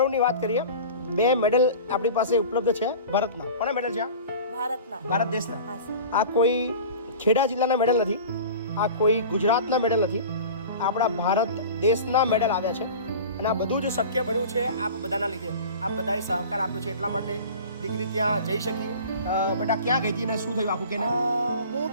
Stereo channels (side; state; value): both; inverted; correlation -0.38